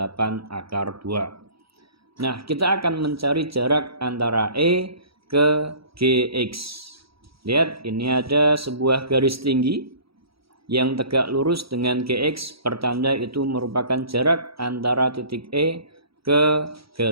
akar 2. Nah, kita akan mencari jarak antara E ke GX. Lihat, ini ada sebuah garis tinggi yang tegak lurus dengan GX, pertanda itu merupakan jarak antara titik E ke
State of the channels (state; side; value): late; left; 0.76 ms